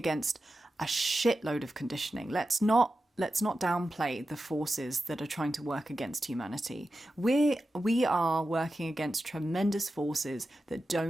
a shitload of conditioning. Let's not downplay the forces that are trying to work against humanity. We are working against tremendous forces that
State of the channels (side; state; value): both; normal; correlation 0.92